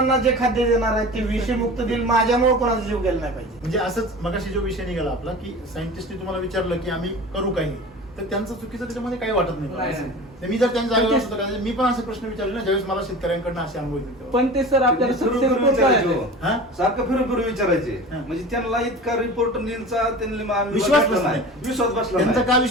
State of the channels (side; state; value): both; normal; correlation 0.36